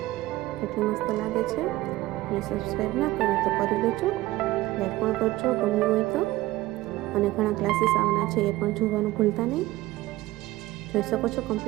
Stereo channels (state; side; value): quieter; left; 17.8 dB